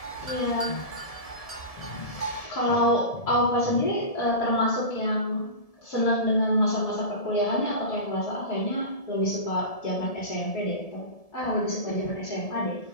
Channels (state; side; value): late; right; 1.7 ms